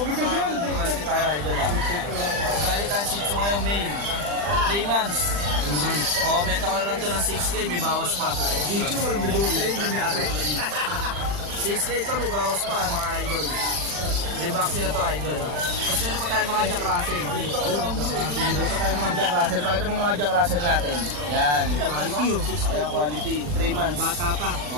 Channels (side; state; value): left; late; 40 ms